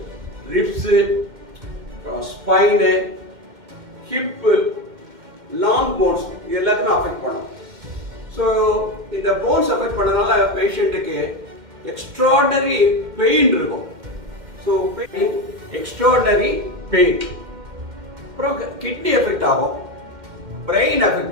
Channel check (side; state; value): left; late; 2.1 ms